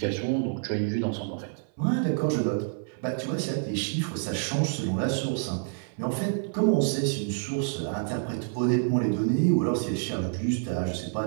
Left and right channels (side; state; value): left; silent; 58 dB below the other